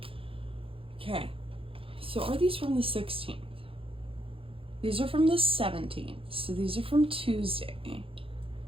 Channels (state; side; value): late; left; 0.27 ms